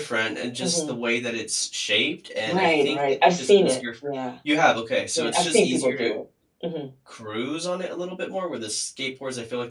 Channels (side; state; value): both; identical; correlation 1.00